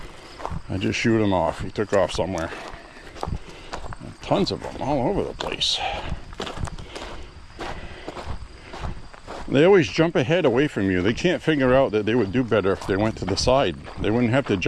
I just shoot him off. He took off somewhere. Tons of them all over the place. They always jump ahead away from you. They can't figure out that they would do better if they went to the side. They wouldn't have to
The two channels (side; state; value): both; identical; correlation 1.00